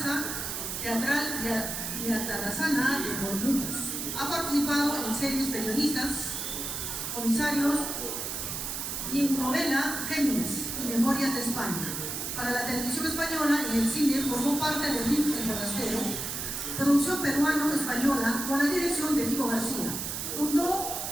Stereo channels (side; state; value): right; noise; hiss, 4 dB below the sound